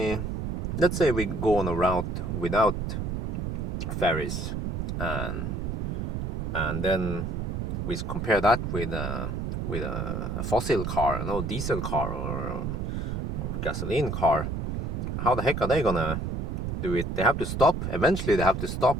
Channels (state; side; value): noise; right; rumble, 2 dB below the sound